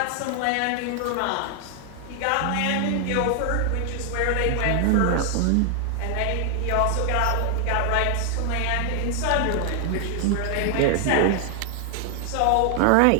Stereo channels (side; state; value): both; different; correlation 0.00